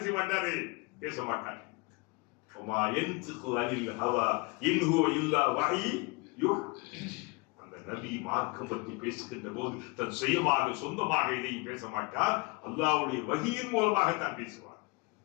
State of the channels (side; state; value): right; quieter; 28.1 dB